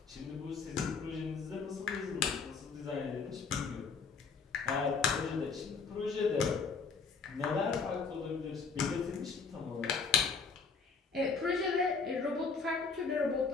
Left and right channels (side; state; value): right; quieter; 5.1 dB